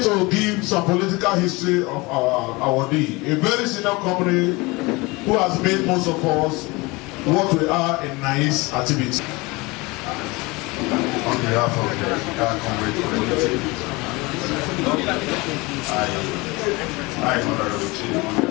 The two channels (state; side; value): quieter; right; 24.2 dB